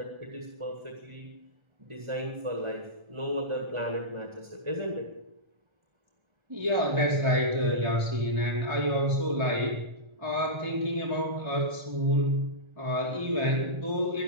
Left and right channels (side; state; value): left; late; 1.3 ms